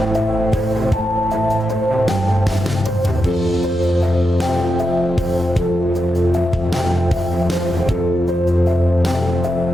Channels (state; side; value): normal; both; correlation 0.87